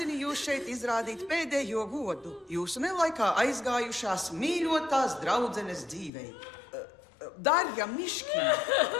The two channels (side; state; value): right; drops out; at 6.1 s